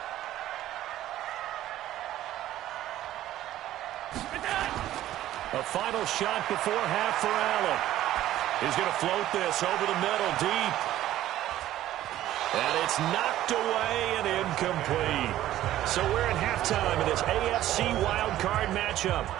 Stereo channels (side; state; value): left; quieter; 13.6 dB